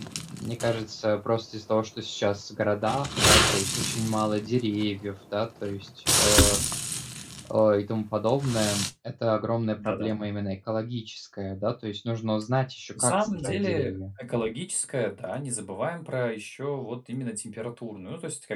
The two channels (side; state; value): both; identical; correlation 1.00